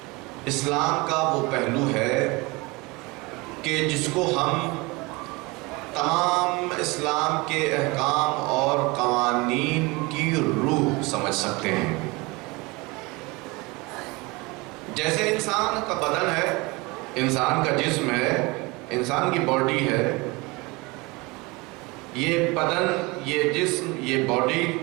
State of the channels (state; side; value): quieter; left; 24.9 dB